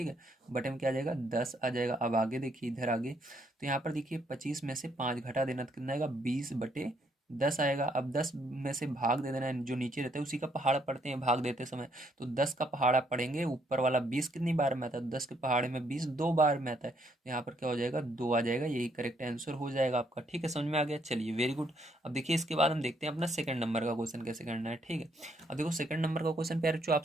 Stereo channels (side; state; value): both; normal; correlation 0.71